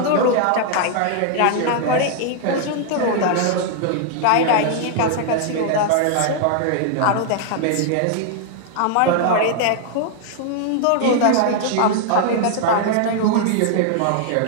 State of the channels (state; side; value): different; both; correlation 0.00